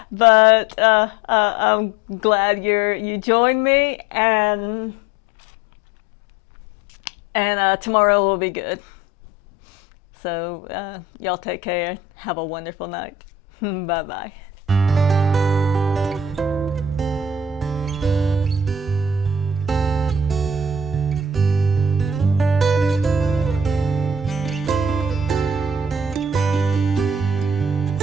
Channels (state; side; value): normal; both; correlation 0.47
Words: But I'm glad you joined me, and tomorrow will be good. So y'all take care. Have a wonderful night. Bye bye.